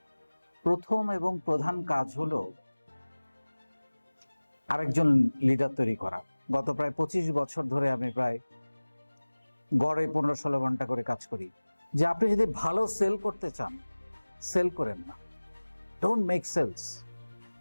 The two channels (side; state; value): both; inverted; correlation -1.00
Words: প্রথম এবং প্রধান কাজ হলো আরেকজন লিডার তৈরি করা। গত প্রায় 25 বছর ধরে আমি প্রায় গড়ে 15-16 ঘন্টা করে কাজ করি। যে আপনি যদি ভালো সেল করতে চান, সেল করেন না, ডোন্ট মেক সেলস।